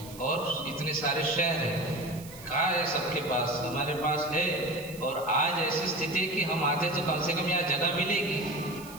और इतने सारे शहर है, कहाँ है सबके पास? हमारे पास है। और आज ऐसी स्थिति है कि हम आते तो कम से कम यहाँ जगह मिलेगी,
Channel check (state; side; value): noise; right; hiss, 17 dB below the sound